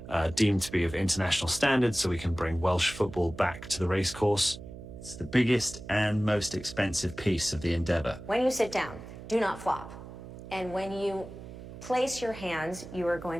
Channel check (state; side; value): noise; right; hum, 13 dB below the sound